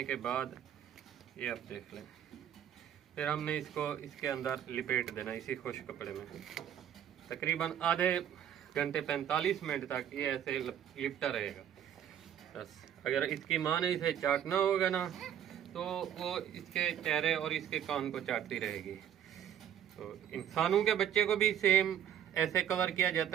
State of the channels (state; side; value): quieter; left; 9.9 dB